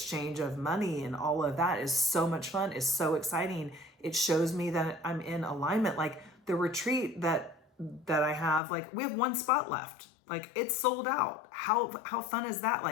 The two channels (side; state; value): right; drops out; at 8.6 s